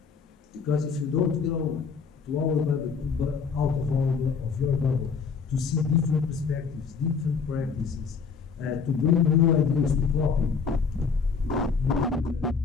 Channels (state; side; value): quieter; right; 5.6 dB